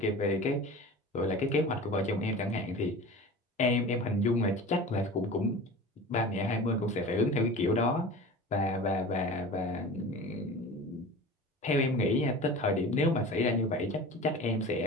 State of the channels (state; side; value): normal; both; correlation 0.36